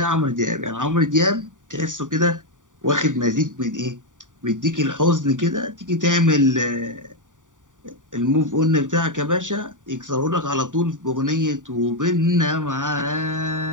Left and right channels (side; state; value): left; late; 0.87 ms